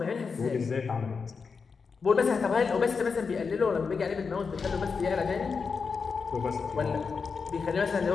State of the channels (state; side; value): quieter; right; 5.2 dB